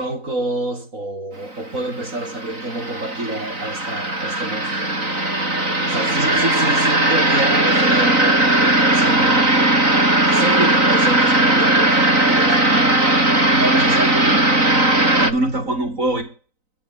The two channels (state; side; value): late; left; 3.9 ms